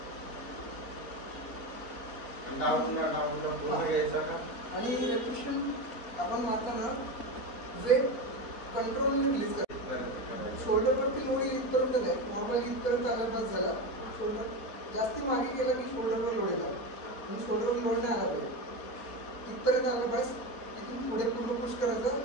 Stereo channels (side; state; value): right; late; 4.2 ms